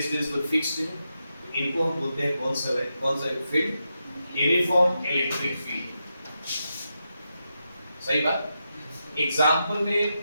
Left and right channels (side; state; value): both; inverted; correlation -0.86